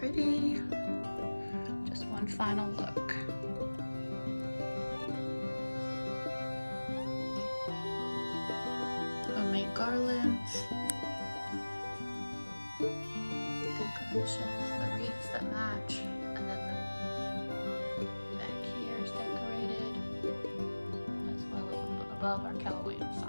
Just one final look. Homemade garlands, decorations, the wreaths that match, and then the back here is decorated, as well as above our Keller Williams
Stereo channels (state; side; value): inverted; both; correlation -1.00